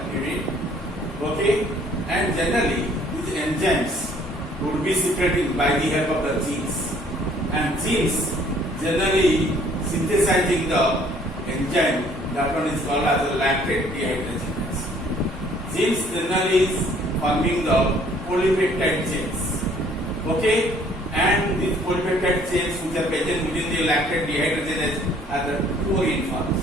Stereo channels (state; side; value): normal; both; correlation 0.59